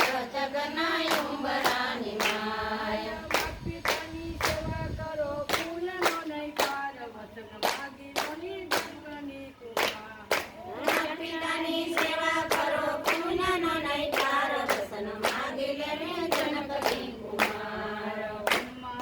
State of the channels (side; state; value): both; identical; correlation 1.00